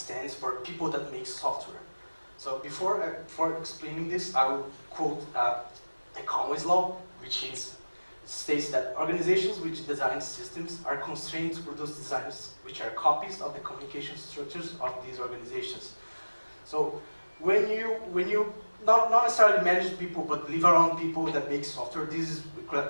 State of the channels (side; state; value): both; inverted; correlation -1.00